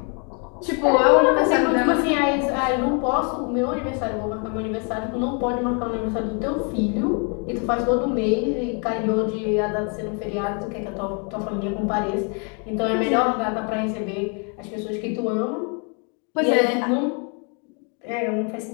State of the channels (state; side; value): quieter; right; 37.5 dB